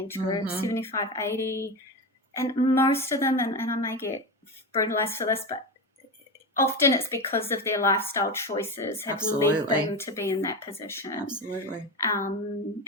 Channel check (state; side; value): normal; both; correlation 0.20